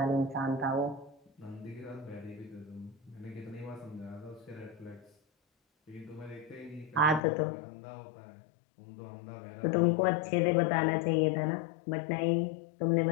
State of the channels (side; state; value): right; drops out; at 7.2 s